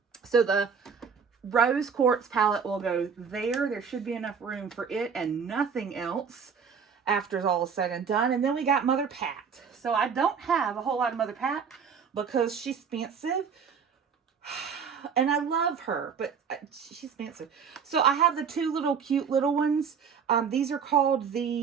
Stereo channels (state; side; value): quieter; left; 6.5 dB